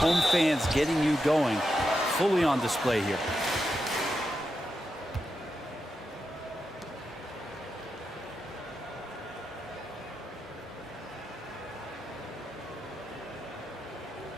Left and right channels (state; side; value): normal; both; correlation 0.87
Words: fans getting you going, fully on display here.